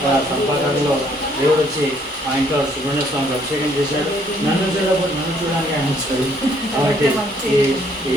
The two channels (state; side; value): normal; both; correlation 0.65